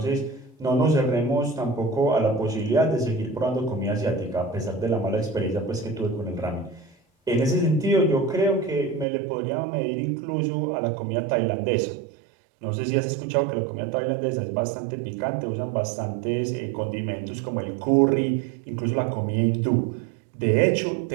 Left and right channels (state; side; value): drops out; left; at 9.1 s